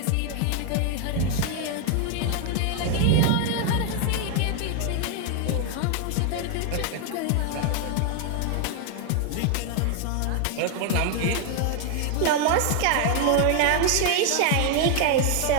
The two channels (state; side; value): different; both; correlation 0.01